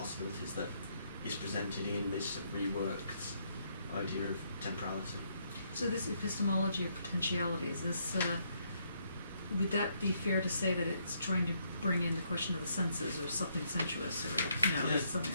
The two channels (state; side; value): inverted; both; correlation -0.73